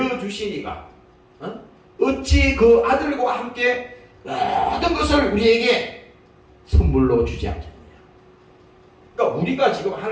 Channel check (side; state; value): both; identical; correlation 1.00